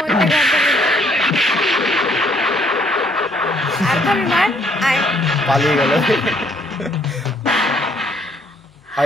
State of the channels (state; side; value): normal; both; correlation 0.66